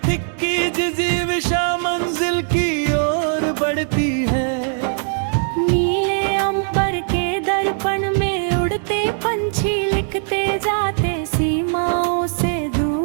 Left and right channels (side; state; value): left; silent; 66 dB below the other